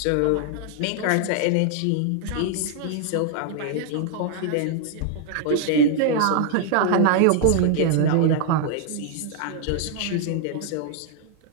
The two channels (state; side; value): different; both; correlation 0.00